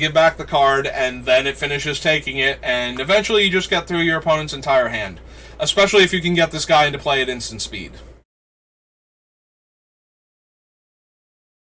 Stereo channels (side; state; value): both; identical; correlation 1.00